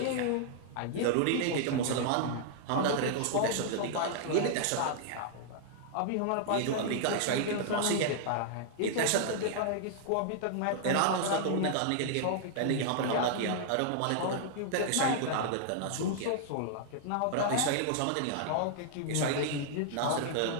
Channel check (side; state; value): both; different; correlation -0.01